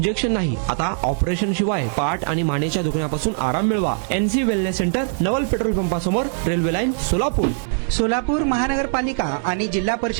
नाही, आता ऑपरेशन शिवाय पाठ आणि मानेच्या दुखण्यापासून आराम मिळवा. NC वेलनेस सेंटर, नवल पेट्रोल पंपासमोर, रेल्वे लाईन, सोलापूर. सोलापूर महानगरपालिका आणि जिल्हा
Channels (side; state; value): left; silent; 65 dB below the other